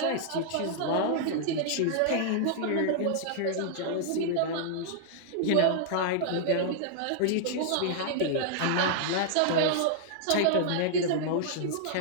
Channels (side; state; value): both; different; correlation -0.01